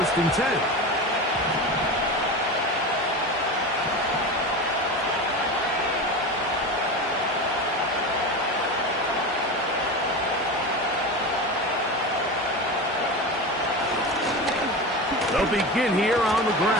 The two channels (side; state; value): both; normal; correlation 0.25